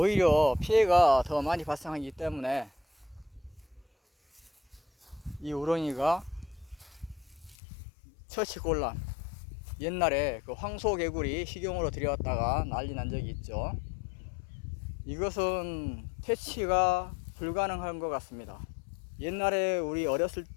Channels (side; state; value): right; drops out; at 7.6 s